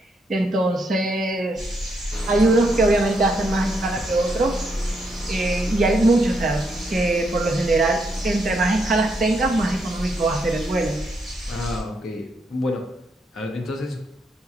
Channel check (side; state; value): both; normal; correlation 0.78